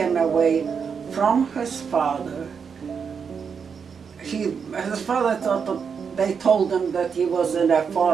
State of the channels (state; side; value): quieter; left; 6.3 dB